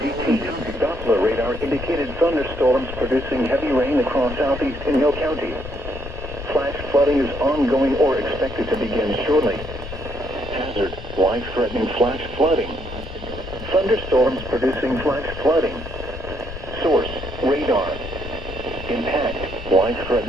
Doppler radar indicated thunderstorms producing heavy rain across southeast Inyo County. Flash flooding is ongoing or expected to begin shortly. Hazard: life-threatening flash flooding. Thunderstorms producing flash flooding. Source: radar. Impact:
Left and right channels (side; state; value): left; noise; rumble, 10 dB below the sound